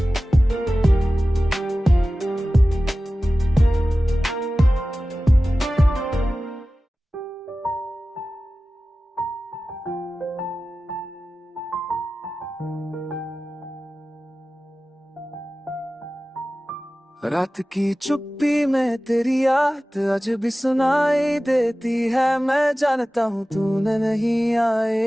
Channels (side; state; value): both; normal; correlation 0.96